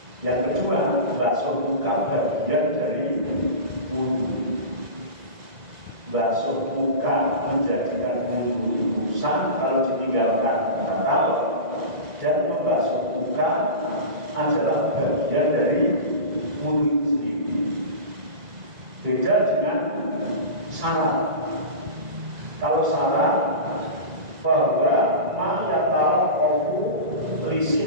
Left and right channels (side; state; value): left; late; 1.9 ms